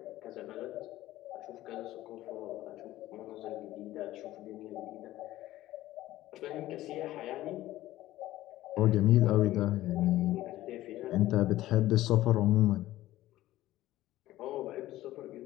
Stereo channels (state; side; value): quieter; right; 15.4 dB